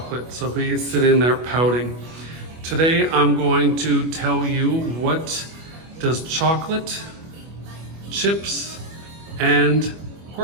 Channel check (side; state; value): left; late; 25 ms